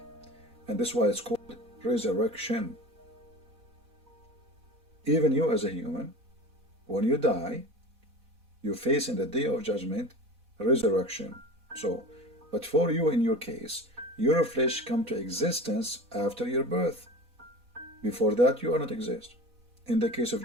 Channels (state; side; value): late; left; 4.1 ms